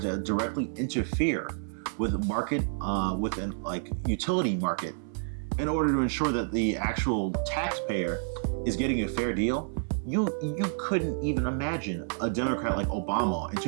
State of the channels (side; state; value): left; silent; 58 dB below the other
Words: to directly interfere with market, with an utility market, in order to ensure that the actual taxpayer is getting a fair deal. You couldn't even imagine a Democrat like Obama in